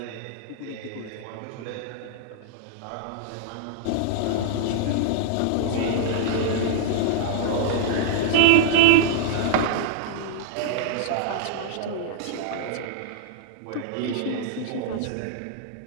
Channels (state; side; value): different; both; correlation -0.01